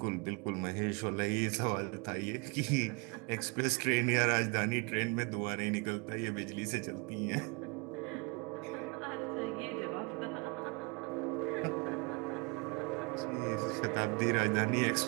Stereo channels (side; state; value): left; quieter; 30.5 dB